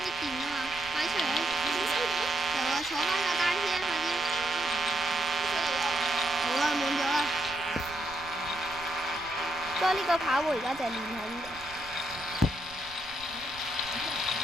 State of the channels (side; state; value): right; noise; rumble, 20 dB below the sound